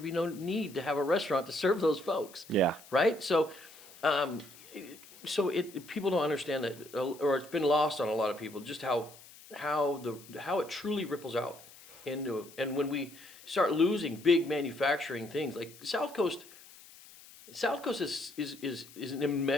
be no need to have a restaurant to serve those folks. Yeah. Right? So, people don't understand that, or it's been lost on a lot of people, just how it truly ripples out into, and when we start losing big manufacturing things like South Coast is an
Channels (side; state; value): left; noise; hiss, 21 dB below the sound